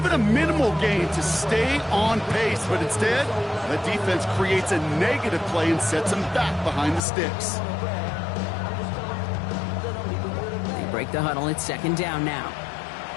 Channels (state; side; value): drops out; right; at 7.0 s